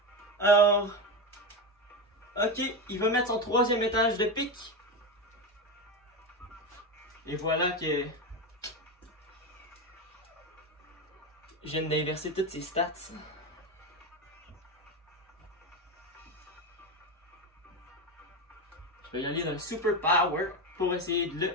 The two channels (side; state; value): both; normal; correlation 0.16